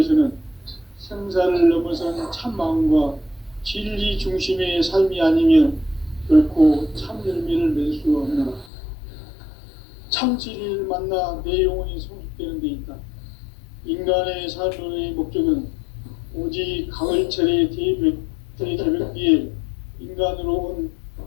생사를 넘어선 참 마음과 진리 중심의 삶이 아니면 결코 참 열매를 맺을 수 없노라. 참 진리를 만나 내 영혼이 성숙되는 데 있다. 인간의 삶의 목적은 오직 가을철의 대개벽기에 인간으로 온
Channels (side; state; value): right; drops out; at 8.7 s